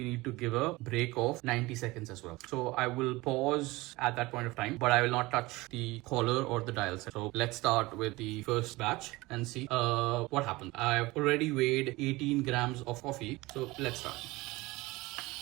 need to give a break of 90 seconds as well. So I will pause at that point of time, but I will not touch the collar or the dial set. So let's start with the first batch and see what happens. I've already weighed 18 grams of coffee. So let's start.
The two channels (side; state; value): left; quieter; 21.1 dB